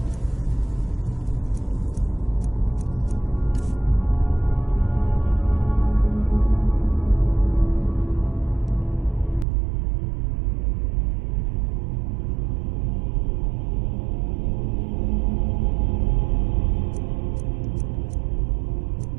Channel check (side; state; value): left; drops out; at 9.5 s